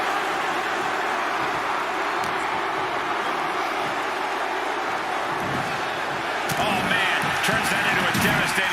Turns that into a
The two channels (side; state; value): left; noise; hum, 26 dB below the sound